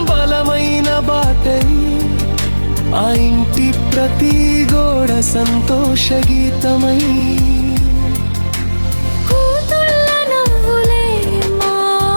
బలమైన బాటై, ఆ ఇంటి ప్రతి గోడ సంతోష గీతమై, కూతుళ్ళ నవ్వులే మా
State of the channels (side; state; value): both; inverted; correlation -1.00